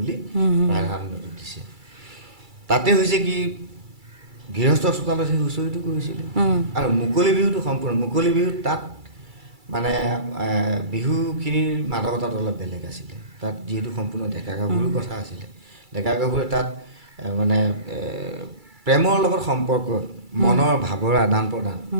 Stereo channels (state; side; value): late; left; 2.3 ms